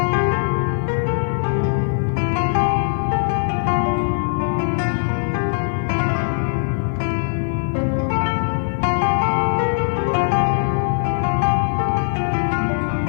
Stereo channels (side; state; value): right; silent; digital silence